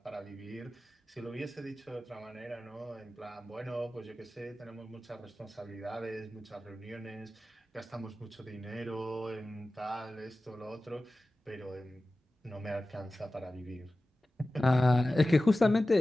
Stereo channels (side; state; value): both; normal; correlation 0.96